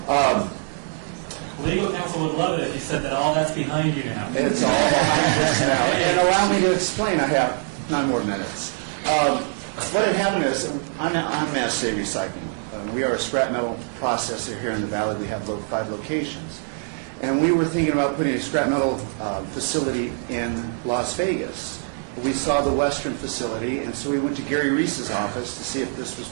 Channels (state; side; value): silent; left; 57 dB below the other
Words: Legal counsel would love it if you said that all that's behind you now. It's all behind us now. And allow me to explain. I have 9 more minutes. What had happened is, I'm Mass Save Recycling. We are a scrap metal processor here in the valley. We have 5 locations. And we were thinking about putting a scrap metal facility in Las Vegas. We saw the Western facility, and so we went to Gary Reese's office to see if this was